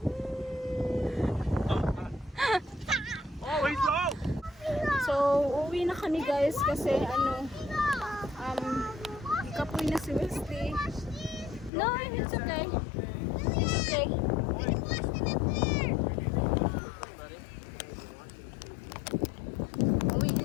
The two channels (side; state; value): right; drops out; at 11.7 s